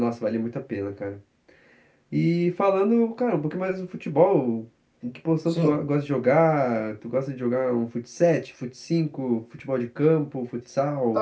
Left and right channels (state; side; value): identical; both; correlation 1.00